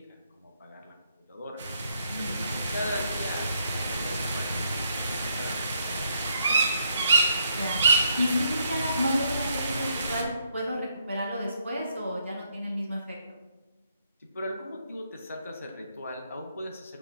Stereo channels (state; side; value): inverted; both; correlation -0.74